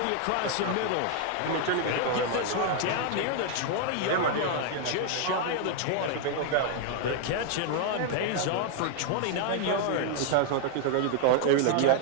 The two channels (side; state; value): both; different; correlation 0.00